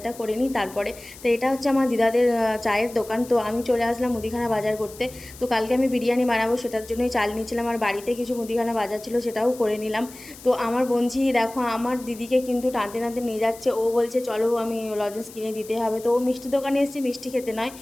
করে নিই তারপরে। তো এটা হচ্ছে আমার দিদাদের চায়ের দোকান। তো আমি চলে আসলাম মুদিখানা বাজার করতে। তো কালকে আমি বিরিয়ানি বানাবো, সেটার জন্যই চাল নিয়েছিলাম। আর বাড়িতে কিছু মুদিখানা বাজার ছিল, সেটাও করে নিলাম। তো আমার বোনঝি দেখো আমার দিদিকে কিন্তু টানতে টানতে নিয়ে যাচ্ছে। ও বলছে চলো, আমি লজেন্স কিনে দিতে হবে। তো ও মিষ্টি দোকানে এসেছে, মিষ্টি খেতে নয়,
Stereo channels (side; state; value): left; noise; hiss, 18 dB below the sound